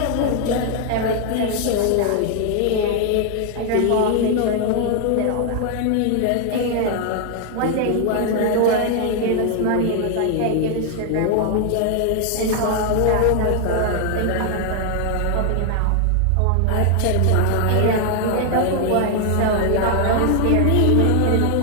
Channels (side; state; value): both; different; correlation 0.00